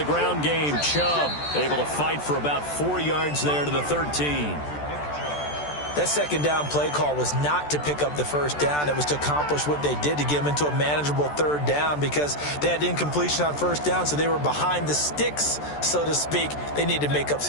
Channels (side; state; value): right; late; 14 ms